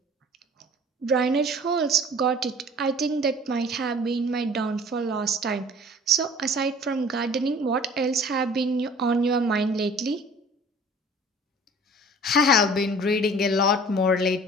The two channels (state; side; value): normal; both; correlation 0.47